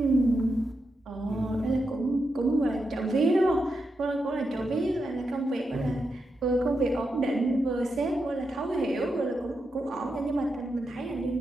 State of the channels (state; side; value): normal; both; correlation 0.86